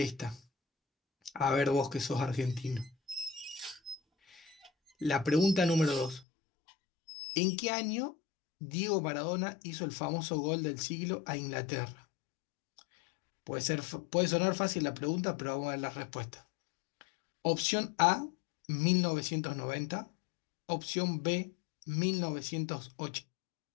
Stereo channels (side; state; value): right; drops out; at 6.2 s